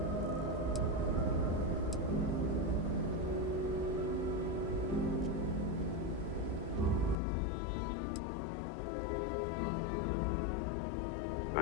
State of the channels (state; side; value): drops out; right; at 7.2 s